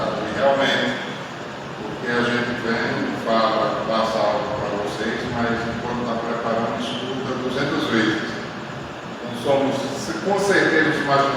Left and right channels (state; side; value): identical; both; correlation 1.00